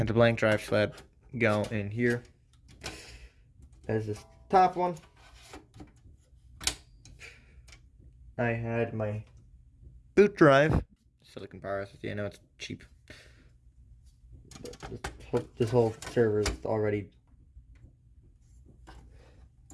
the blank drive sled go in here as this top one. I had my boot drive, silicon power SSD. I know it's cheap. This whole server is already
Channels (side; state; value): both; identical; correlation 1.00